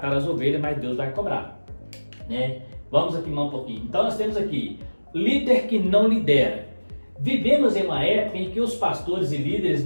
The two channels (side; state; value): both; inverted; correlation -1.00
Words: as ovelhas, mas Deus vai cobrar, né? Vamos aqui mais um pouquinho. Então nós temos aqui líder que não lidera. Vivemos em uma época em que os pastores e líderes